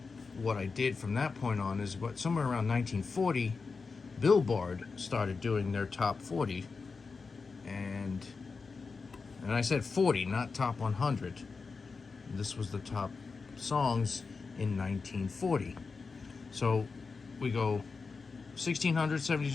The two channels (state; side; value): quieter; right; 4.6 dB